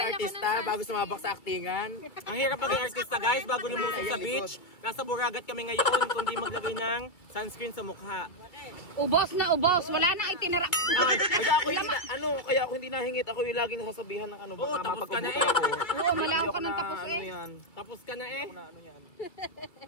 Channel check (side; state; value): right; late; 2.2 ms